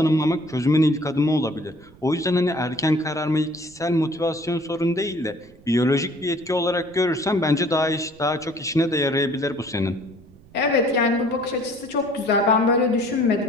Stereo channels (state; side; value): noise; right; rumble, 25 dB below the sound